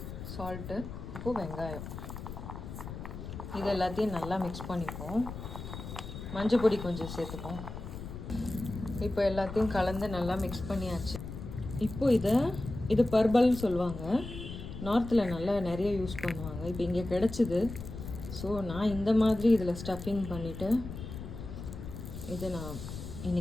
சால்ட்டு, உப்பு, வெங்காயம் இது எல்லாத்தையும் நல்லா மிக்ஸ் பண்ணிப்போம். மஞ்சள் பொடி கொஞ்சம் சேர்த்துப்போம். இப்போ எல்லாத்தையும் கலந்து நல்லா மிக்ஸ் பண்ணியாச்சு. இப்போ இது பர்பல்னு சொல்லுவாங்க, நார்த்தில் நல்லா நிறைய யூஸ் பண்ணுவாங்க. இப்போ இங்கே கிடச்சிது, ஸோ நான் இந்த மாதிரி இதில் ஸ்டஃபிங் பண்ணிவிட்டு இதை நான்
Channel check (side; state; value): left; noise; rumble, 9 dB below the sound